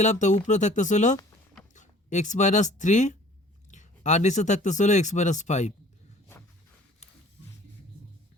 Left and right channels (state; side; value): normal; both; correlation 0.51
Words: তো উপরে থাকতেছিল x-3 আর নিচে থাকতেছিল x-5।